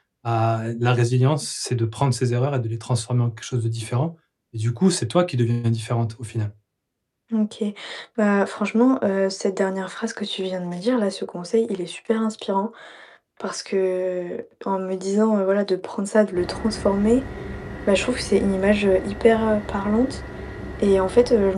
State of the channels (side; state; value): both; identical; correlation 1.00